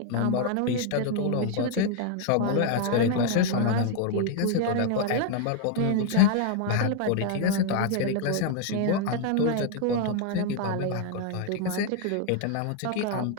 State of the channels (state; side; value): different; both; correlation 0.00